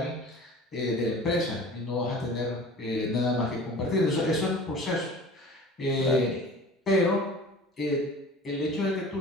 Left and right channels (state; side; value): normal; both; correlation 0.41